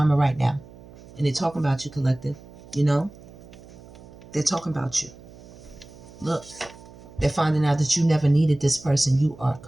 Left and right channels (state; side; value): noise; right; hum, 20 dB below the sound